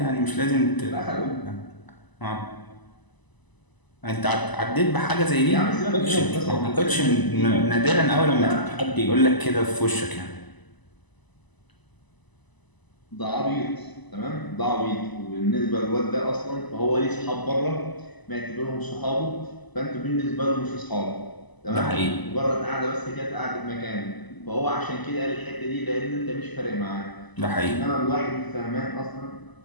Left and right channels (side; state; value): right; late; 1.0 ms